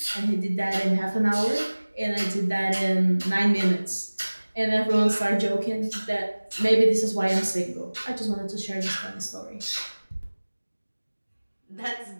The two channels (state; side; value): inverted; both; correlation -1.00